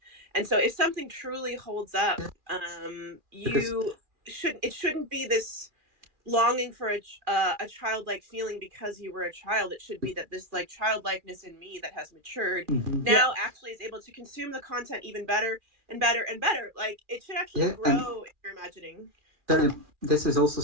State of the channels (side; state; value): left; late; 2.4 ms